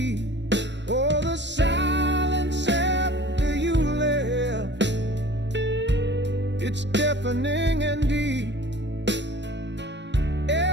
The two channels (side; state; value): left; late; 0.52 ms